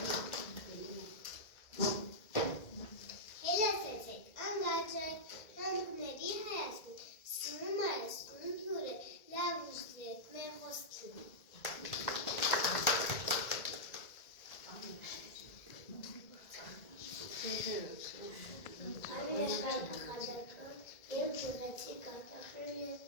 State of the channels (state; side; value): late; right; 1.9 ms